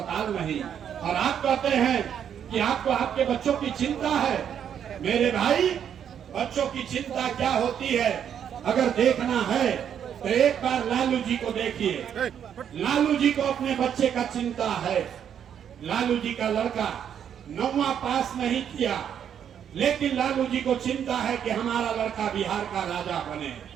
नहीं, और आप कहते हैं कि आपको आपके बच्चों की चिंता है। मेरे भाई, बच्चों की चिंता क्या होती है अगर देखना है तो एक बार लालू जी को देखिए। लालू जी को अपने बच्चे का चिंता है। लालू जी का लड़का 9वां पास नहीं किया, लेकिन लालू जी को चिंता है कि हमारा लड़का बिहार का राजा बने।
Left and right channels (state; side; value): quieter; left; 8.8 dB